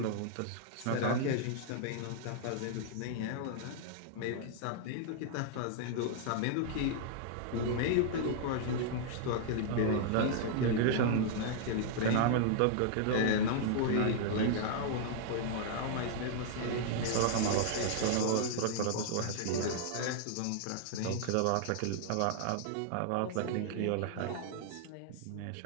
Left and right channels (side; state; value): both; different; correlation -0.01